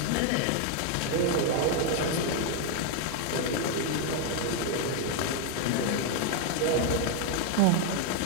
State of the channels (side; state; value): both; different; correlation 0.01